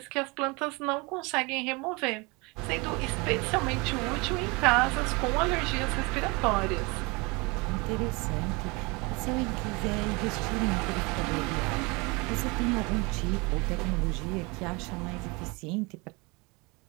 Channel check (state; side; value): quieter; left; 27.1 dB